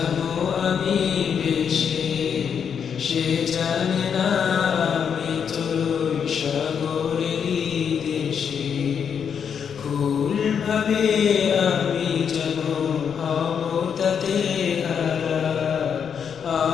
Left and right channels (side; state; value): right; quieter; 7.3 dB